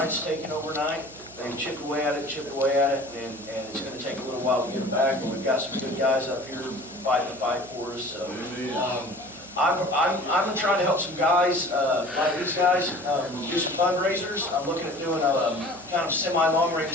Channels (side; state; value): right; noise; hum, 21 dB below the sound